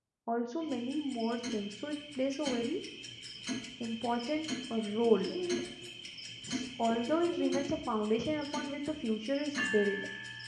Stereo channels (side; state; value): both; identical; correlation 1.00